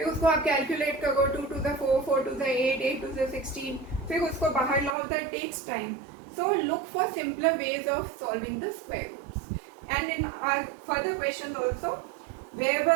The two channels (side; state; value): left; drops out; at 5.0 s